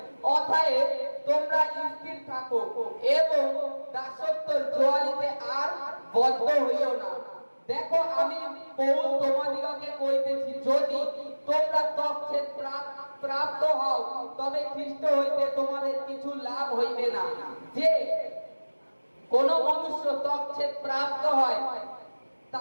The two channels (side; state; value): both; inverted; correlation -1.00